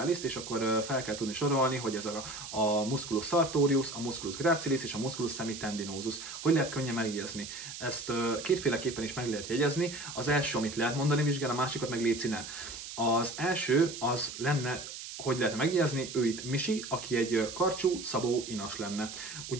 és akkor fel kell tudni sorolni, hogy ez a musculus sartorius, a musculus gracilis és a musculus semitendinosus. Hogy lehet könnyen megjegyezni? Ezt kétféleképpen is meg lehet jegyezni. Az első, amit lehet mondani vizsgán, a másikat meg léci ne. Az első az lenne, hogy lehetne megjegyezni, ő itt Misi, aki egy karcsú, szabó inas lenne.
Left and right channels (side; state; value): right; noise; hiss, 10 dB below the sound